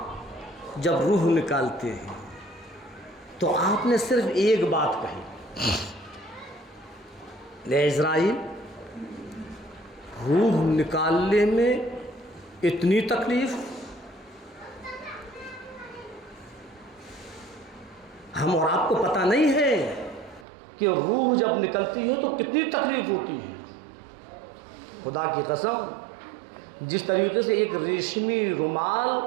जब रूह निकालते हैं तो आपने सिर्फ एक बात कही, ले इज़राइल, रूह निकालने में इतनी तकलीफ, हम और आपको पता नहीं है कि रूह जब निकलती है तो कितनी तकलीफ होती है। खुदा की कसम, जिस तरीके से एक रेशमी रुमाल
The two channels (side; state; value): left; drops out; at 20.5 s